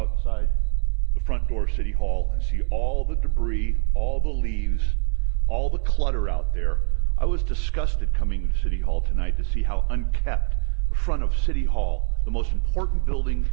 the front door of City Hall and see all the debris, all the leaves, all the clutter out there. I was disgusted coming to City Hall tonight to see how unkept the front of City Hall, the most important building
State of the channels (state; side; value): silent; left; 57 dB below the other